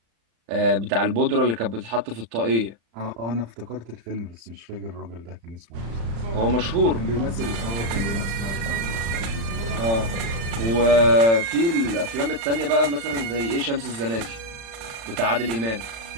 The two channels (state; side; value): late; left; 35 ms